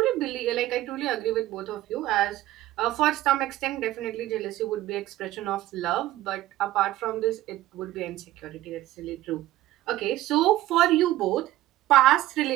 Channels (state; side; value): quieter; left; 15.3 dB